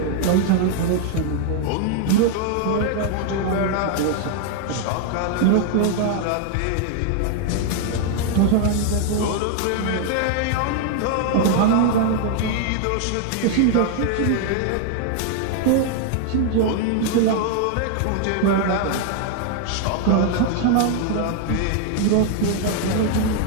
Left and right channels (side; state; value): both; different; correlation 0.00